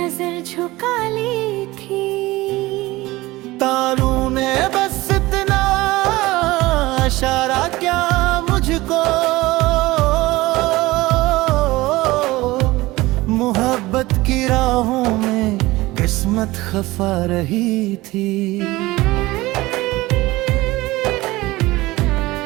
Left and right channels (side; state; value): left; quieter; 19.5 dB